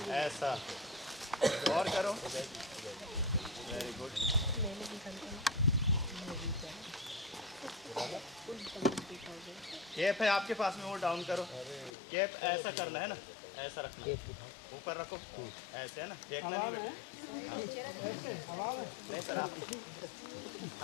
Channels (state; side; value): drops out; right; at 11.9 s